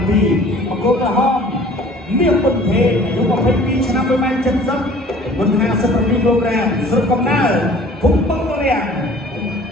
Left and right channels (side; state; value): both; normal; correlation 0.49